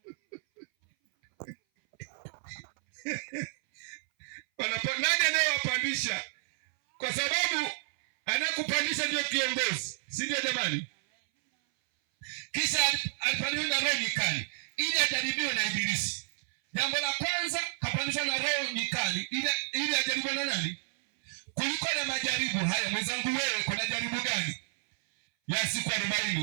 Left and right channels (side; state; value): left; silent; 57 dB below the other